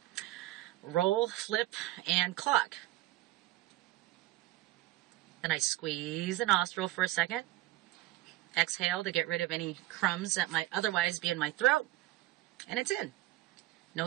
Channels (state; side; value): quieter; left; 16.7 dB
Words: Roll, flip, and cluck. Then I squeeze the nostril for a second. Exhale to get rid of any crumbs that might otherwise be in my throat. And it's in.